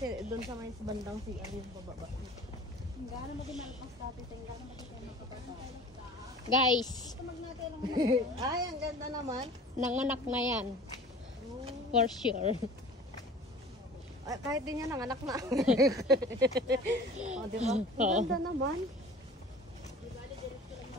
dun sa may bandang si yung pababa. Gano'n mo ginalpas dati, tingnan mo tayo makapata. Guys, Ay, ang ganda naman. nanganak na yan. For sure. Ay, kahit din yan, ang anak na. O, di ba? Ang Oo. ganda naman.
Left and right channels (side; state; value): both; normal; correlation 0.42